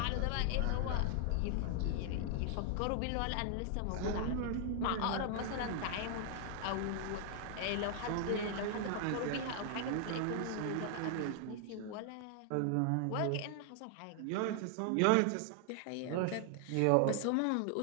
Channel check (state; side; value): different; both; correlation 0.00